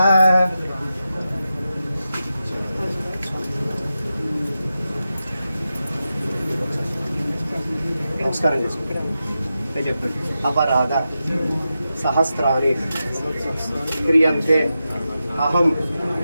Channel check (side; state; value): both; inverted; correlation -0.90